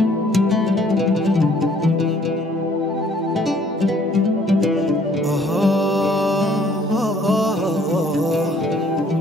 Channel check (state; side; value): normal; both; correlation 0.60